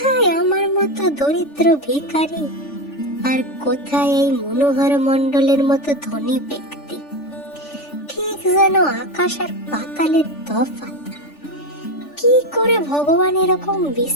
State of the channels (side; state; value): right; late; 3.4 ms